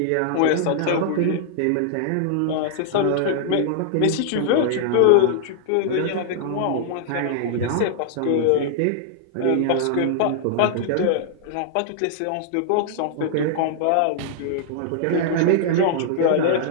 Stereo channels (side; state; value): both; different; correlation -0.01